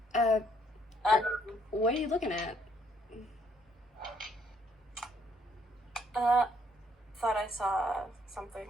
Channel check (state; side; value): normal; both; correlation 0.67